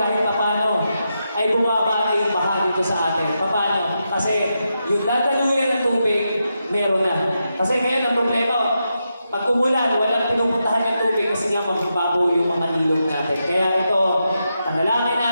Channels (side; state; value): both; inverted; correlation -0.86